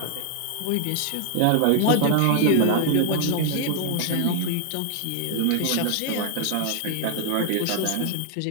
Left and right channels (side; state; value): both; different; correlation 0.00